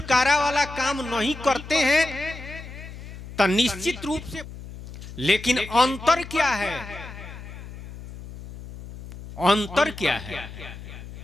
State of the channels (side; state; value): left; noise; hum, 13 dB below the sound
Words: वाला काम नहीं करते हैं तो निश्चित रूप से, लेकिन अंतर क्या है? अंतर क्या है?